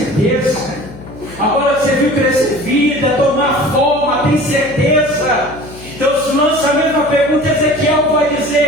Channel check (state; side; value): noise; left; hum, 16 dB below the sound